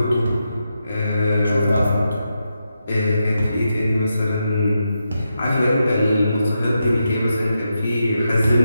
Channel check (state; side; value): inverted; both; correlation -0.86